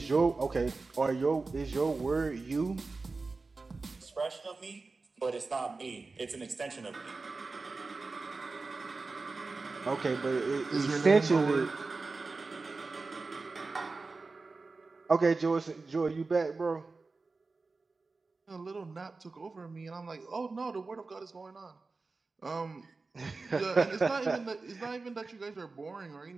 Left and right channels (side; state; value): left; quieter; 3.8 dB